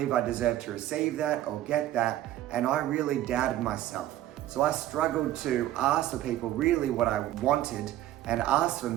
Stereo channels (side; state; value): left; quieter; 13.7 dB